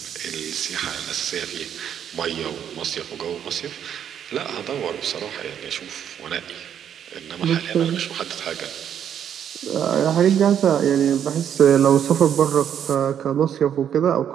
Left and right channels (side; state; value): left; quieter; 9.1 dB